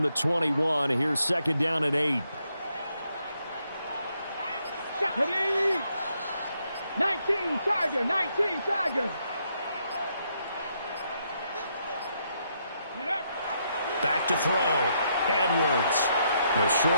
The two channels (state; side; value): inverted; both; correlation -0.76